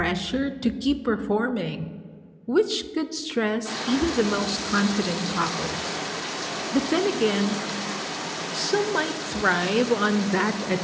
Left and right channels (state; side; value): identical; both; correlation 1.00